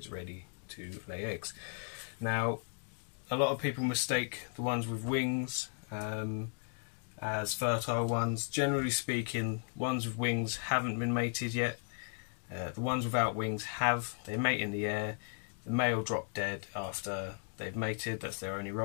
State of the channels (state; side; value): silent; right; 54 dB below the other